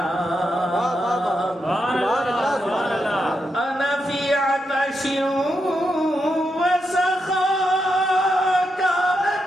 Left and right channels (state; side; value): normal; both; correlation 0.84